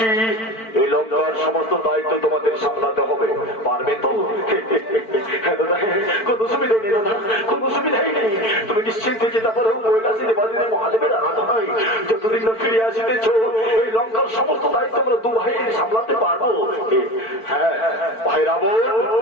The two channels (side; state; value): right; late; 4.5 ms